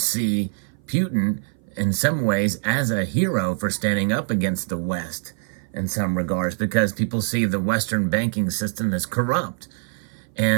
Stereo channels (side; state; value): left; silent; 58 dB below the other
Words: Putin in some ways as a hero for standing up against the West in some regards, because people see the Western banking system as corrupt.